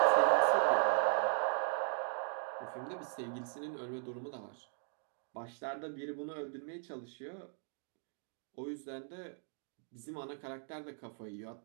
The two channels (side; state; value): left; silent; 52 dB below the other